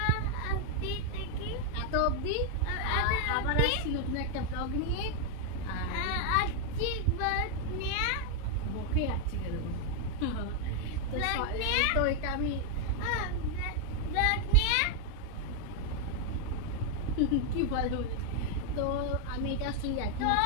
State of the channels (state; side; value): different; both; correlation 0.00